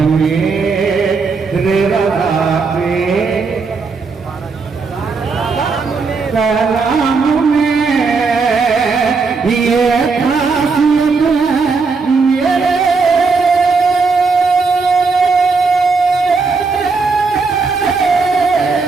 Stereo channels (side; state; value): left; quieter; 4.5 dB